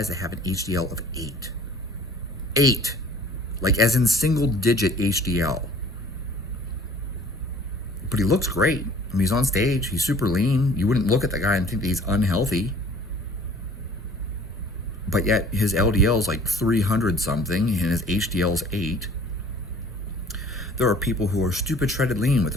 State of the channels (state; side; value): normal; both; correlation 0.50